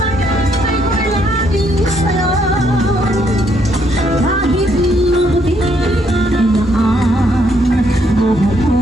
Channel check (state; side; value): normal; both; correlation 0.72